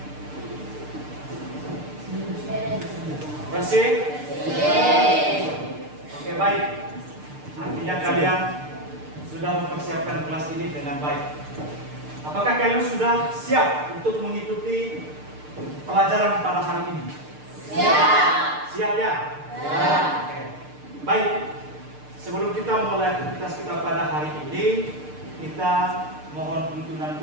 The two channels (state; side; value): late; left; 6.7 ms